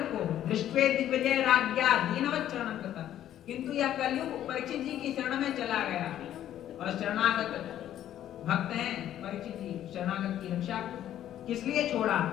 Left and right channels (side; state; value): right; quieter; 11.6 dB